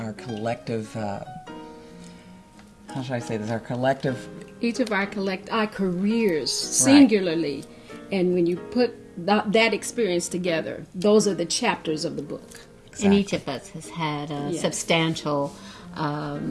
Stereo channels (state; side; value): identical; both; correlation 1.00